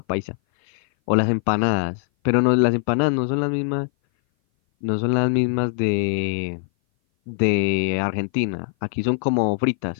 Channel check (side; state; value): right; silent; 58 dB below the other